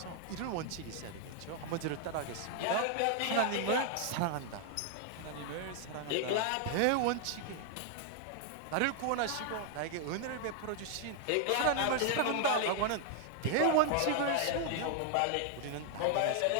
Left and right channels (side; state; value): both; different; correlation 0.00